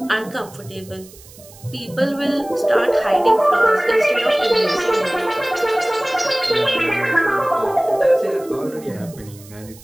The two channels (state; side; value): noise; right; hiss, 22 dB below the sound